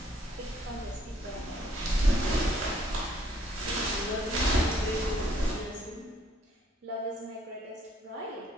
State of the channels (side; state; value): both; normal; correlation 0.65